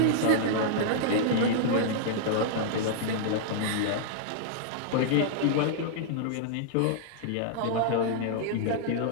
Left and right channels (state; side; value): different; both; correlation -0.01